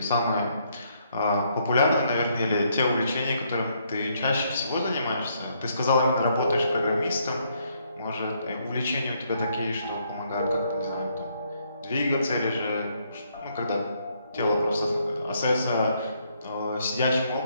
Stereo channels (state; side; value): inverted; both; correlation -0.72